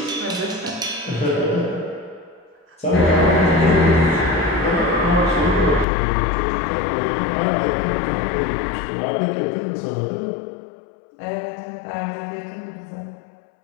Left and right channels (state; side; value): drops out; right; at 5.9 s